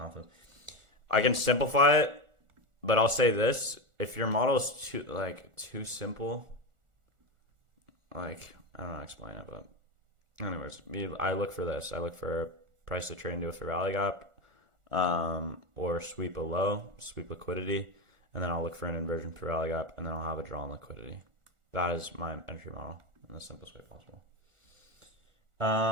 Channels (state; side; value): late; left; 1.4 ms